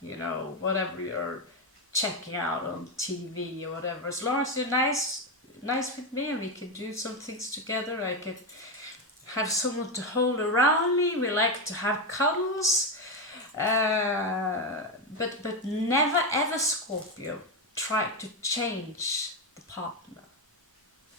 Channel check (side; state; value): both; normal; correlation 0.09